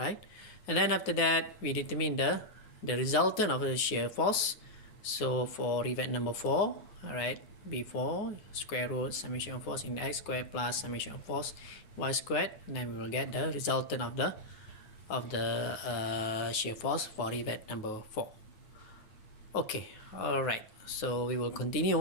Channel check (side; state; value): right; late; 9.4 ms